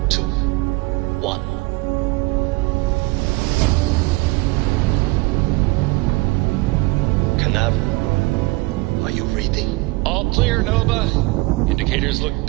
2, 1. Canaveral, are you reading? All clear, Nova. Indicators look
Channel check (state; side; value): quieter; left; 23.6 dB